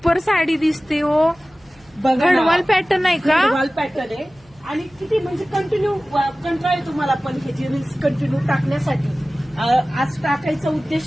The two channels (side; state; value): right; noise; hum, 30 dB below the sound